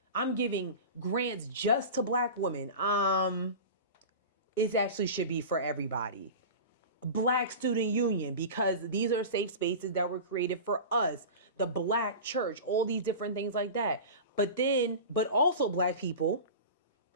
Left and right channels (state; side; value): inverted; both; correlation -0.31